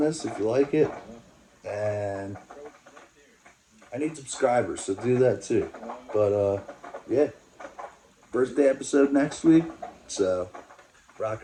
if you like it. And I need subscribers, so do that too. But, yeah. Birthday episode next week. So, rock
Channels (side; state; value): both; identical; correlation 1.00